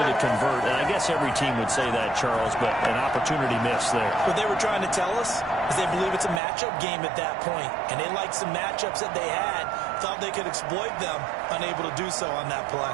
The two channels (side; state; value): left; drops out; at 6.4 s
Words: to convert. And I guess every team would say that, Charles, but an opportunity missed there. What they were trying to tell us is they believe it's a matchup game at that point, and they liked some matchups that they had, thought they could exploit them, unable to do so on that play.